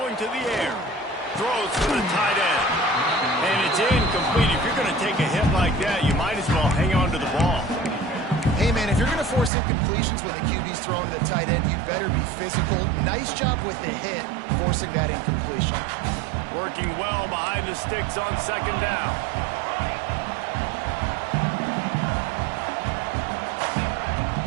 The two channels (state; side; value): drops out; left; at 9.5 s